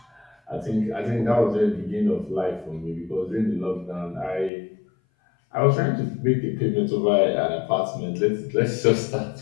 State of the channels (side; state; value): right; drops out; at 4.5 s